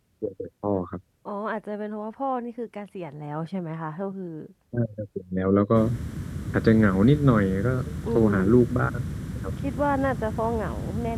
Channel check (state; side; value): identical; both; correlation 1.00